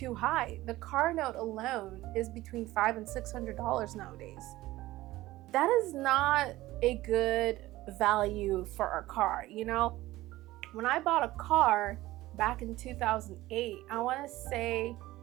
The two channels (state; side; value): quieter; left; 17.3 dB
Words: high. The car note alone is between $500 and $600 nowadays. That is not a good value for a car, When I bought a car back in 2008, I want to say